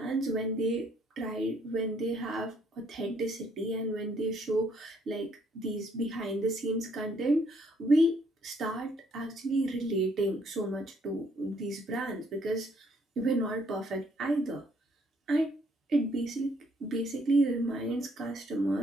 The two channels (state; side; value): normal; both; correlation 0.67